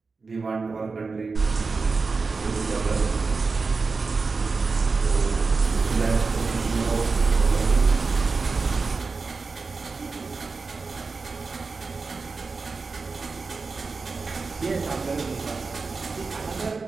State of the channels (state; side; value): quieter; left; 4.3 dB